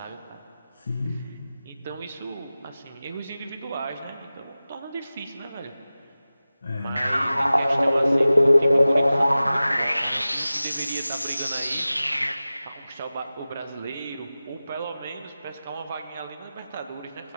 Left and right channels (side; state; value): both; inverted; correlation -0.96